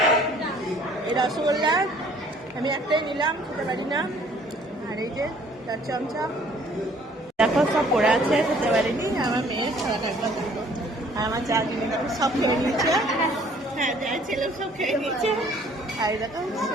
এই রসগোল্লা, আমি একটাই নিলাম, খেতে পারি না। আর এই যে 4 চামচা, দেখো সব পড়ে আছে, খেতে পারিনি। আমার মেয়ে খারাপ একবার দেখো, আর আমার যা জিনিস দেখো সব খেয়ে নিচ্ছে। হ্যাঁ, যা ছেলে সব খেয়ে নিচ্ছে। আর দেখো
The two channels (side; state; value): both; normal; correlation 0.57